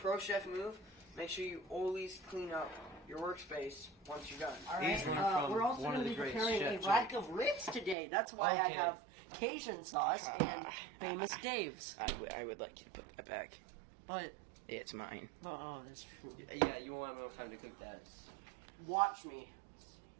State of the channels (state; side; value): drops out; left; at 8.0 s